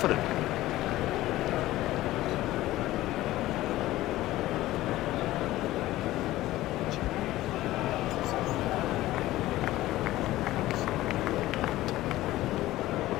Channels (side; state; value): right; quieter; 16.2 dB